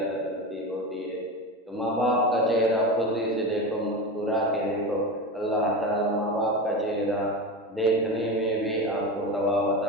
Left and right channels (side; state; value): both; normal; correlation 0.23